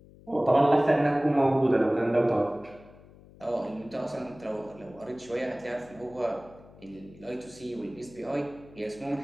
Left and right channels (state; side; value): noise; left; hum, 22 dB below the sound